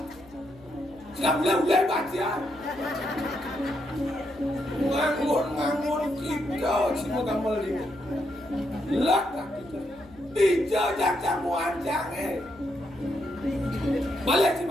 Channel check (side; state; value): left; noise; hum, 23 dB below the sound